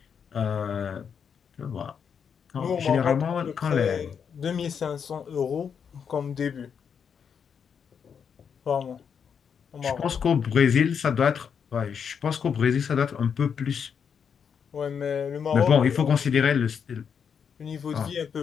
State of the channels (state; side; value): quieter; right; 7.0 dB